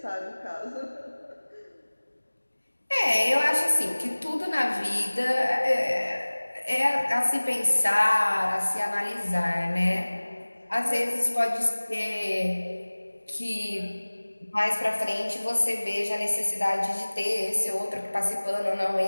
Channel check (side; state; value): both; inverted; correlation -1.00